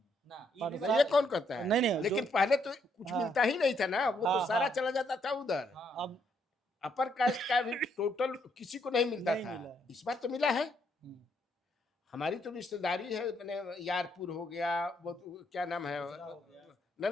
ना पर ये तो ये कौन कहता है? नहीं, नहीं, लेकिन जो- पहले तो कुछ हाँ। मिलता ही नहीं था ना, वो हाँ, तो सारा हाँ। चला जाता था उधर। हाँ, अब अपर कास्ट का भी टोटल किसी को नहीं मिलता नहीं था, मिला है। इस बार तो मिला है। हम्म, हमारी तो रिश्तेदारी है, मैंने यारपुर हो गया, वो तो क्या नाम है, ना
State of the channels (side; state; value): both; normal; correlation 0.73